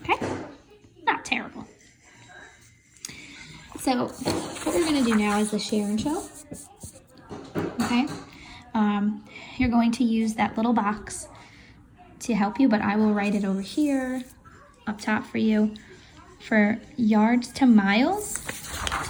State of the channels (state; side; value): identical; both; correlation 1.00